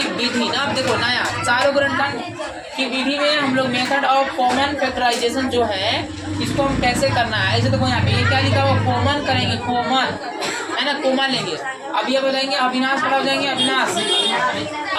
विधि ना। अब देखो नया सारोगुणनखंड की विधि में हम लोग मेथड ऑफ कॉमन फैक्टराइजेशन जो है, इसको हम कैसे करना है। ऐसे देखो यहाँ पे ये क्या लिखा हुआ, कॉमन करेंगे, कॉमन है ना, कॉमन लेंगे। अब ये बताएंगे अविनाश खड़ा हो जाएंगे,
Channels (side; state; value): both; identical; correlation 1.00